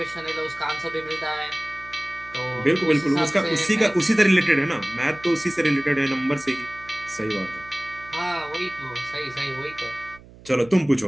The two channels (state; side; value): noise; right; hum, 21 dB below the sound